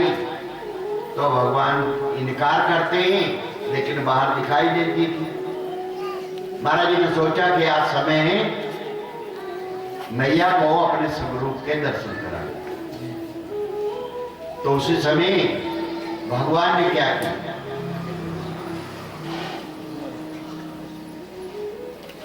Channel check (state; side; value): identical; both; correlation 1.00